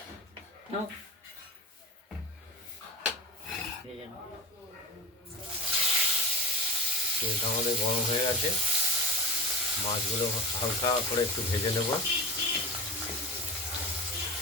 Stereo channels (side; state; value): both; normal; correlation 0.31